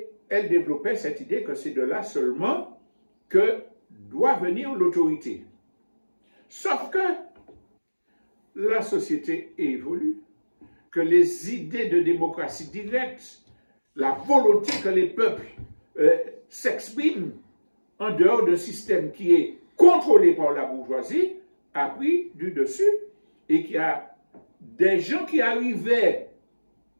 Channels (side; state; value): both; inverted; correlation -1.00